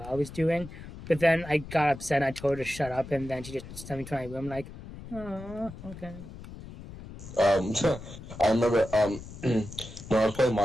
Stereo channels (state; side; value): noise; left; rumble, 14 dB below the sound